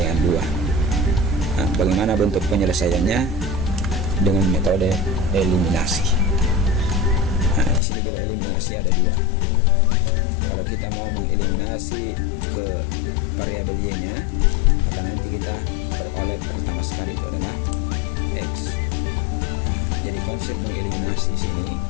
2. Bagaimana bentuk penyelesaiannya dengan metode eliminasi? Di sini juga eliminasi ada dua. Kalau kita mau mengeliminasi ke variabel Y-nya, maka nanti kita peroleh pertama sekali itu adalah X. Jadi konsep mengeliminasi sini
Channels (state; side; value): drops out; right; at 7.8 s